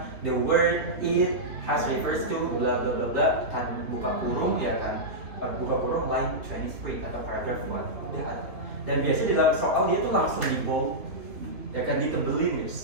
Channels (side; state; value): left; late; 3.2 ms